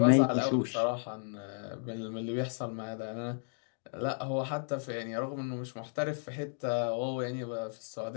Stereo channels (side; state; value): right; silent; digital silence